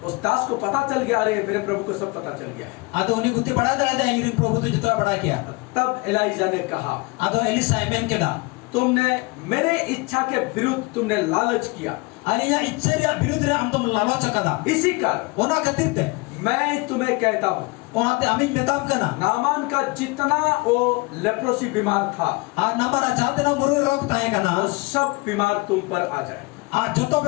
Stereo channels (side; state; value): right; quieter; 25.7 dB